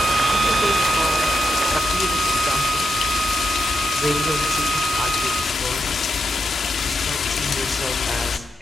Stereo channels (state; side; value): normal; both; correlation 0.82